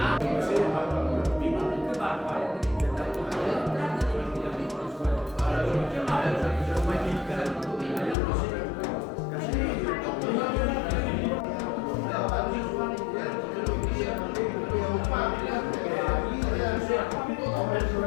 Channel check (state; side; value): drops out; right; at 8.2 s